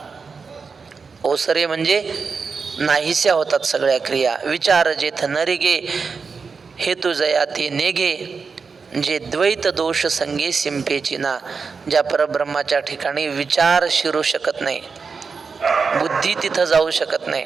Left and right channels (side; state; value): left; quieter; 5.1 dB